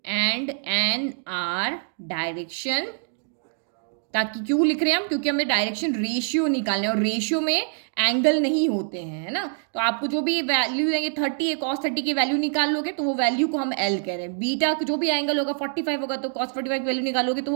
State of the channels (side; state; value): left; silent; digital silence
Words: and N are direction, ताकि क्यों लिख रहे हैं हम, क्योंकि हमें डायरेक्शन रेशियो निकालना है और रेशियो में एंगल नहीं होते हैं, है ना। तो आपको जो भी वैल्यू देंगे 30 है, cos 30 की वैल्यू निकाल लोगे तो वो वैल्यू को हम L कह रहे हैं। बीटा जो भी एंगल होगा 45 होगा तो cos 45 की वैल्यू निकालोगे तो